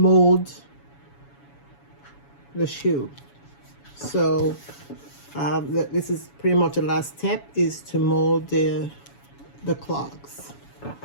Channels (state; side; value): late; right; 7.1 ms